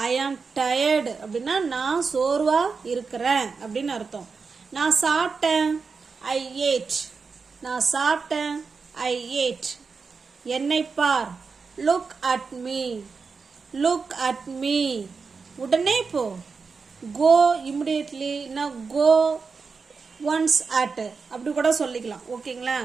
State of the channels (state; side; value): quieter; left; 4.9 dB